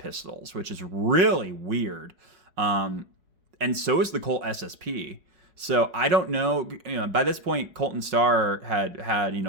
which is really weird. And so is the Colt SSP. So I don't know, by this point, Colt and Star had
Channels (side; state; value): left; late; 5.4 ms